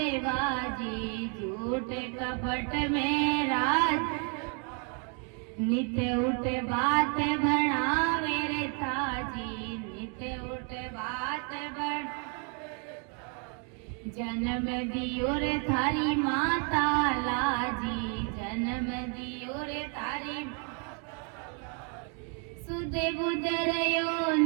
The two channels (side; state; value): left; quieter; 39.2 dB